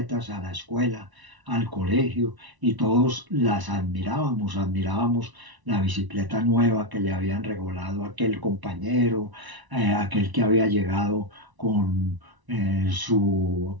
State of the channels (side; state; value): left; late; 1.0 ms